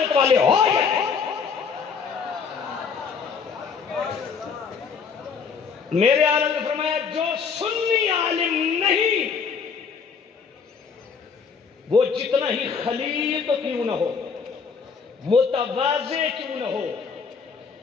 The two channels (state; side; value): quieter; right; 5.9 dB